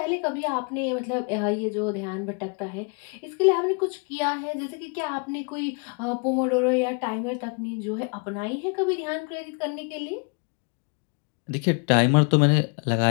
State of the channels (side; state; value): right; quieter; 36.6 dB